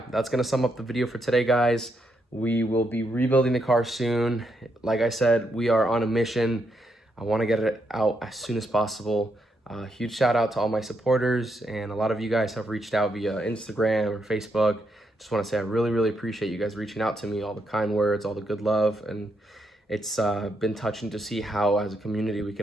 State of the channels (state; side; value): normal; both; correlation 0.79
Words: that's gonna sum up the video for today, guys. We will be rebuilding the car soon. Like I said, we are on a mission. I want to get it out as soon as possible. Huge shout out to all my supporters, and a lot of you guys have reached out via Instagram or Facebook. Just want to say I really, really appreciate you guys reaching out to me, all the kind words, all the good love, and it's been touching to see how as a community we